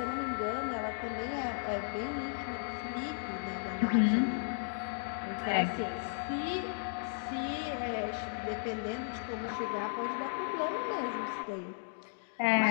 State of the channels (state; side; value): silent; right; digital silence